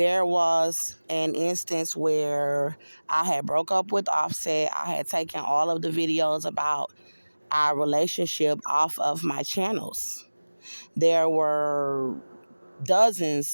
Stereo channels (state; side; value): inverted; both; correlation -1.00